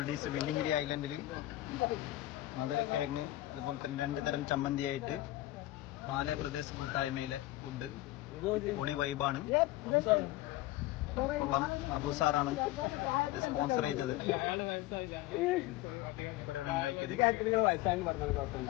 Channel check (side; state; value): right; quieter; 16.6 dB